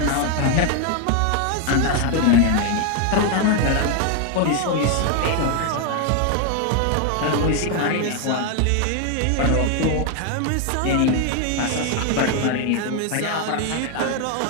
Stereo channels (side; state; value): both; different; correlation 0.01